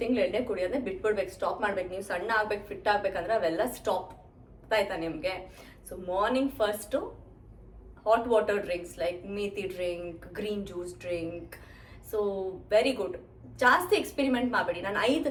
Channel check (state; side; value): identical; both; correlation 1.00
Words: ತಿಂಗಳು ಎಣ್ಣೆ ಕುಡಿಯೋದನ್ನ ಬಿಟ್ಬಿಡ್ಬೇಕು, ಸ್ಟಾಪ್ ಮಾಡ್ಬೇಕು. ನೀವು ಸಣ್ಣ ಆಗ್ಬೇಕು, ಫಿಟ್ ಆಗ್ಬೇಕಂದ್ರೆ ಅವೆಲ್ಲ ಸ್ಟಾಪ್ ಆಯ್ತಾ ನಿಮಗೆ. So morning first hot water drinks like methi drink, green juice drink. So very good. ಜಾಸ್ತಿ ಎಕ್ಸ್ಪೆರಿಮೆಂಟ್ ಮಾಡಬೇಡಿ. ನಾನು